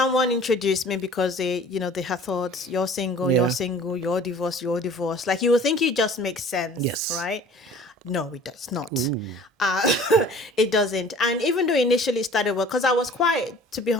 introduced me because they had thought, you're single, you're divorced. Like, you would think it just makes sense, Yes. right? No, it does not. It doesn't. And even though initially it started well, because I was to be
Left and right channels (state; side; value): normal; both; correlation 0.47